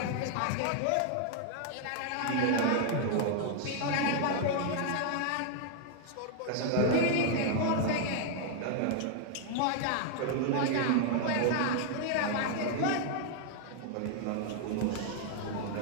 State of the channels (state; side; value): different; both; correlation 0.00